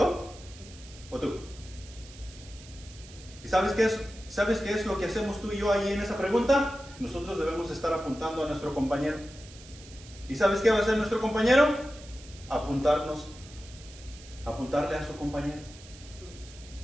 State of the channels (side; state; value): right; noise; hiss, 19 dB below the sound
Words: o tú? ¿Y sabes qué es lo que hacemos tú y yo ahí en esa pregunta? Nosotros debemos estar apuntando a nuestro compañero. ¿Y sabes qué va a hacer nuestro compañero? Apuntarle a su compañero.